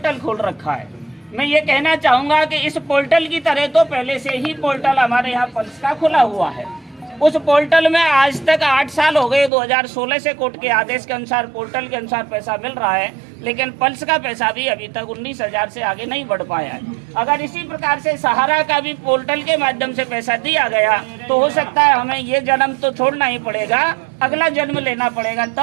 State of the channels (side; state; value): left; drops out; at 9.5 s